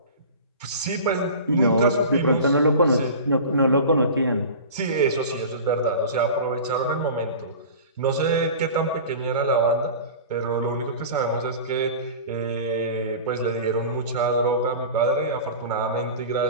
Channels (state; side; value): inverted; both; correlation -0.35